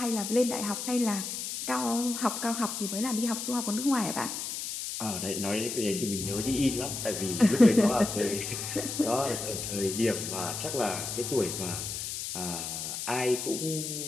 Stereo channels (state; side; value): noise; left; hiss, 5 dB below the sound